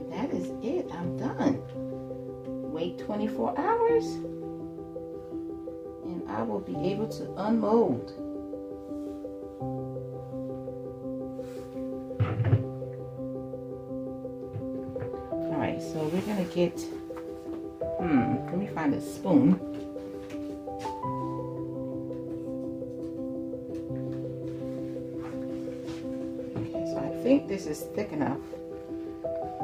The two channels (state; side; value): identical; both; correlation 1.00